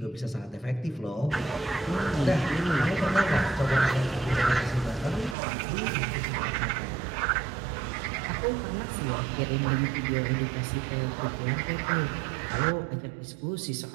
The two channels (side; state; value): left; drops out; at 5.4 s